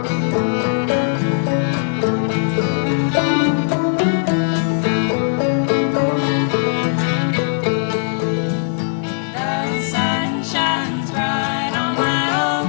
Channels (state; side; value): silent; right; digital silence